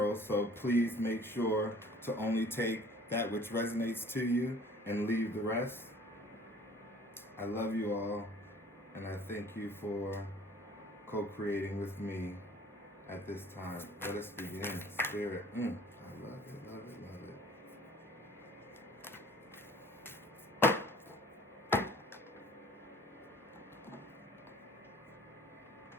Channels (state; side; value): normal; both; correlation 0.51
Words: so please make sure to only take that which resonates to you and leave the rest. I love you all, and I thank you for co-creating with me at this time. Let us begin. Spirit. I love it, love it, love it.